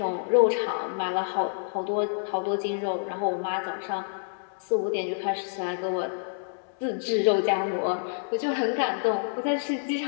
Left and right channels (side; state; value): right; silent; digital silence